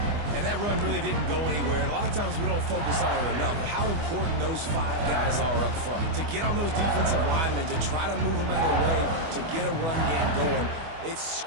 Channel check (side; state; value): left; late; 24 ms